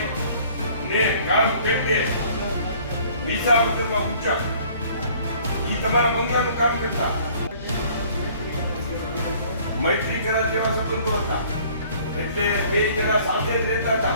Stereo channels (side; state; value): both; inverted; correlation -0.55